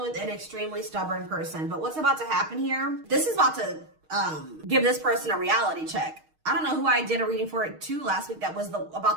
with an extremely stubborn person. But what's about to happen here? This is about to give this person a reality check. I don't know who I did a reading for it too last week that was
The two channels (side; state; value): left; late; 6.4 ms